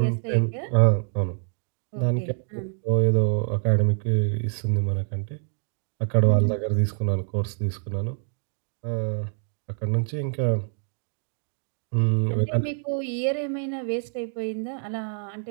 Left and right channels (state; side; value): silent; left; 61 dB below the other